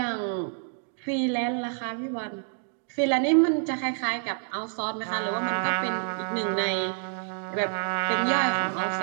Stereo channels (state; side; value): silent; left; 60 dB below the other